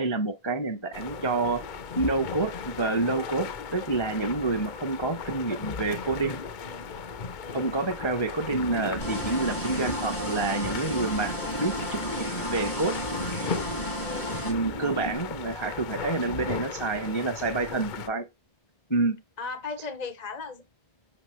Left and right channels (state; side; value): late; right; 1.5 ms